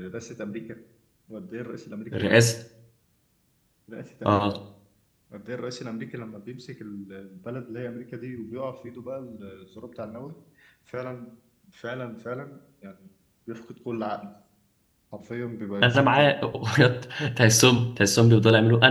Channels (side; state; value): both; identical; correlation 1.00